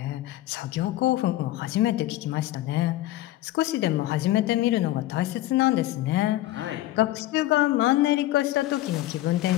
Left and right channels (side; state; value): right; quieter; 15.6 dB